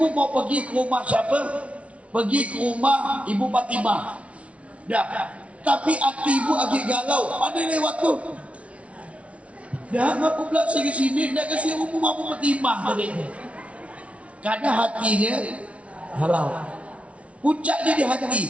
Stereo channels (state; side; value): late; left; 0.063 ms